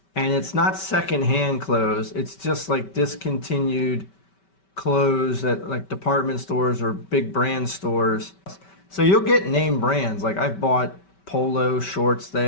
and it's not secondhand clothes. It's just like discontinued clothes at like department stores or big brand stores. So you'll get name brands. Like I've bought polo shorts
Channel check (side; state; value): right; late; 5.2 ms